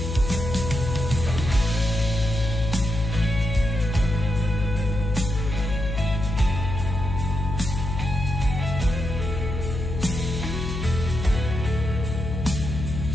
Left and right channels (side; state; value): left; noise; hum, 4 dB below the sound